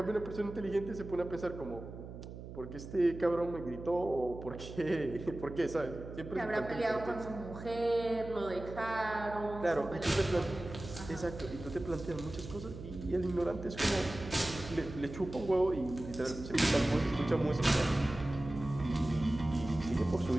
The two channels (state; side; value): noise; right; hum, 12 dB below the sound